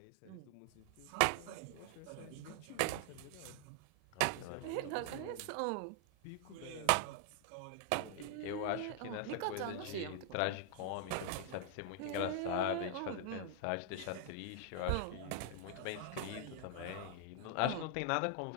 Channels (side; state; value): both; different; correlation 0.00